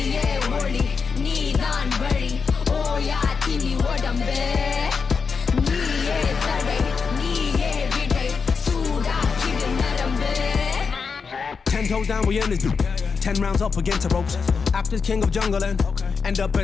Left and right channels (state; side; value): quieter; right; 5.4 dB